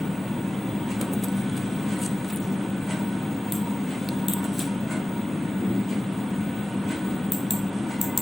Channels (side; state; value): both; normal; correlation 0.97